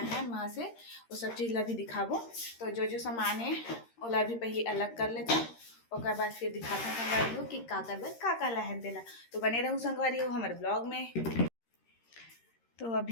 हैं वहाँ से वो सब चीज़ ला भी दिखाबो। तो जो सामान है ओला भी पहले अलग कर लेते और बाद फिर दिखाते हैं संगवारी हो कि का करबे का लाए हैं तेला। तो बने रहूँ संगवारी हो हमारे ब्लॉग में। तो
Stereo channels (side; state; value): right; late; 13 ms